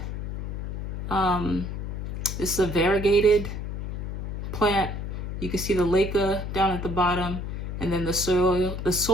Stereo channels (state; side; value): noise; left; hum, 5 dB below the sound